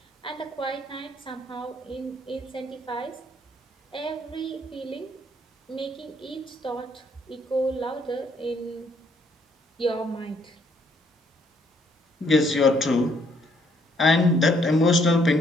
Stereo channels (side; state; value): both; normal; correlation 0.68